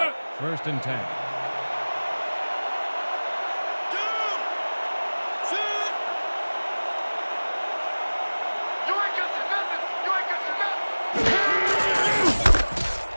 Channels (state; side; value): inverted; both; correlation -1.00